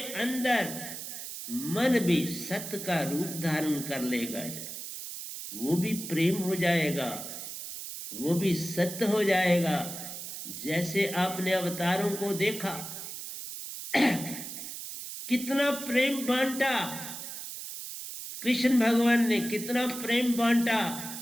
अंदर मन भी सत्य का रूप धारण कर लेगा, वो भी प्रेम हो जाएगा, वो भी सत्य हो जाएगा। जैसे आपने अवतारों को देखा, कितना प्रेम बांटा कृष्ण भगवान ने, कितना प्रेम बांटा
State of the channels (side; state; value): right; noise; hiss, 8 dB below the sound